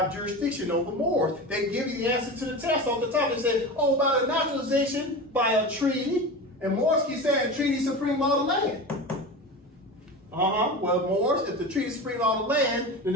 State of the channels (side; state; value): both; normal; correlation 0.28